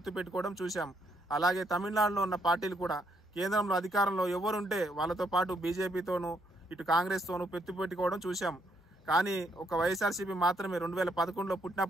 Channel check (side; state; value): both; normal; correlation 0.73